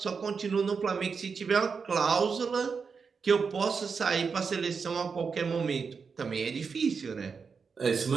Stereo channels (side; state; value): left; quieter; 5.5 dB